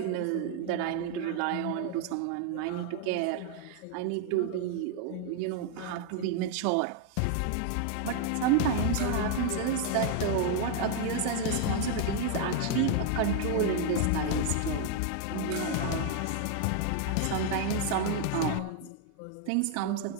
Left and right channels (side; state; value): both; different; correlation 0.00